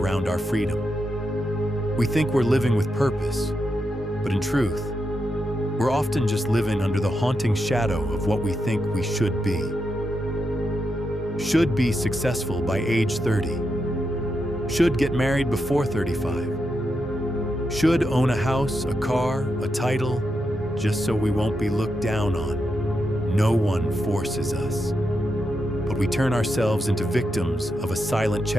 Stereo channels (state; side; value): normal; both; correlation 0.85